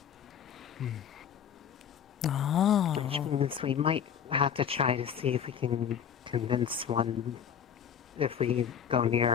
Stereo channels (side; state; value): right; quieter; 8.3 dB